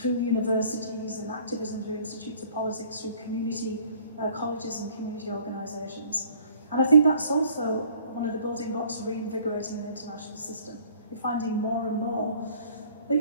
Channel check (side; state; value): both; inverted; correlation -0.56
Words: universities and activism through institutes of politics, through community colleges and community organisations. And I think that's also one of the building blocks of reinvigorating an international system. You're finding more and more that